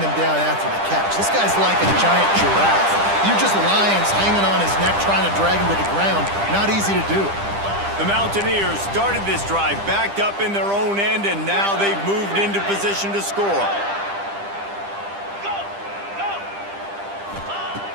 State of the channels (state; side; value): late; left; 10 ms